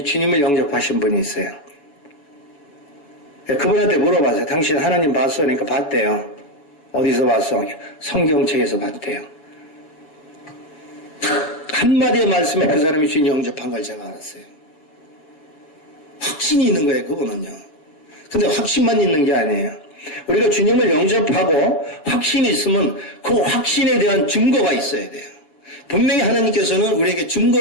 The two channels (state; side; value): late; right; 7.0 ms